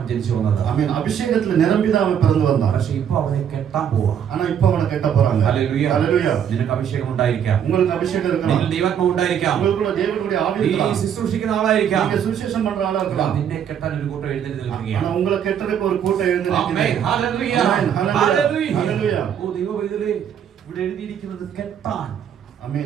ജനിച്ചു വന്നത്. ஆமென். அபிஷேகத்துல நிரம்பிதான் அவன் பிறந்து வந்தான். പക്ഷെ ഇപ്പൊ അവനെ കെട്ടാൻ പോവാ. ஆனா இப்ப அவனை கெட்ட போறாங்க. ഹല്ലേലൂയ. ஹalleluya. നിനക്ക് അഭിഷേകം ഉണ്ടായിരിക്കാം. உங்களுக்கு அபிஷேகம் இருக்கலாம். നിന്നിൽ ദൈവാത്മാവ് ഉണ്ടായിരിക്കാം. உங்களுக்குள்ள தேவனுடைய ஆவி നീ இருக்கலாம். ശുശ്രൂഷിക്കുന്ന ആളായിരിക്കാം. நீங்க சுவிசேஷம் பண்ற ஆளா இருக்கலாம். നിന്നെ കെട്ടാൻ ഒരു കൂട്ടം എഴുന്നേറ്റ് ஆனா നിൽക്കുകയാണ്. உங்களை கெட்டறதுக்கு ஒரு கூட்டம் எழுந்து ആമേൻ. நிக்குது. ഹല്ലേലൂയ. ആമേൻ. ഹല്ലേലൂയ. ഹല്ലേലൂയ. ഓ ദൈവവൈദ്യലേ, ഇവിടെ എഴുതിയിരിക്കുന്നത് കെട്ടാൻ.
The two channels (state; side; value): quieter; left; 8.7 dB